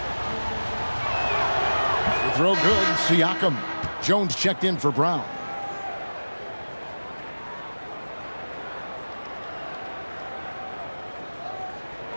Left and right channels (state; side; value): inverted; both; correlation -1.00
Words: Throw good. Siakam. Jones checked in for Brown.